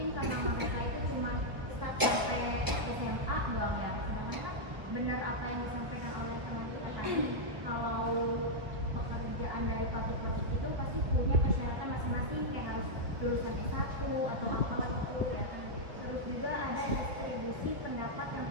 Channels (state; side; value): late; left; 1.2 ms